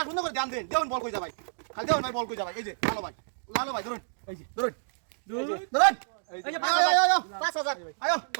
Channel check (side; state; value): left; silent; digital silence